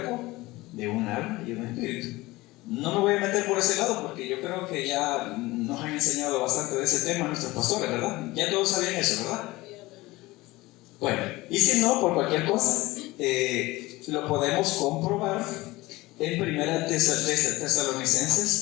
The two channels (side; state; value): right; quieter; 20.1 dB